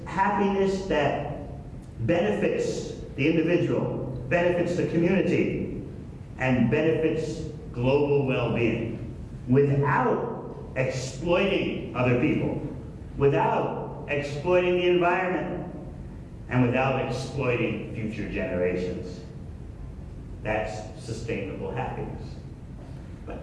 happiness that benefits the individual, benefits the community, and benefits global well-being without exploiting other people, without exploiting the environment, and without exploiting future generations. That's sustainable happiness. But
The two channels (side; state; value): both; identical; correlation 1.00